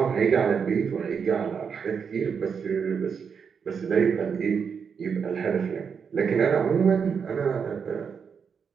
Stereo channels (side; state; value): left; quieter; 6.4 dB